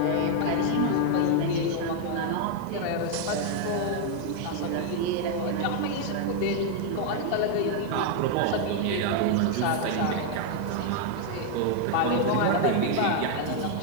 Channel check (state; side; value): different; both; correlation 0.00